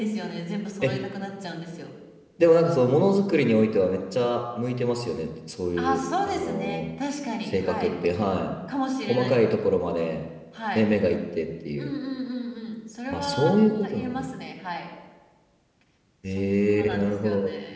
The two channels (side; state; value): both; identical; correlation 1.00